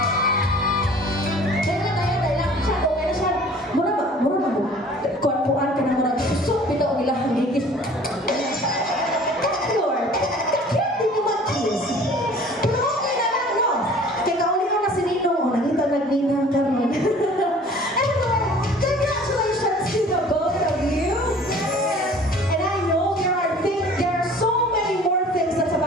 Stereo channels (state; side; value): normal; both; correlation 0.49